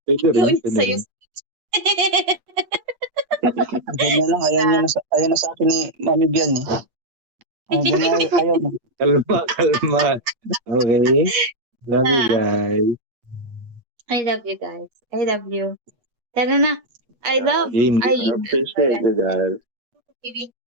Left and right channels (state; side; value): late; left; 8.1 ms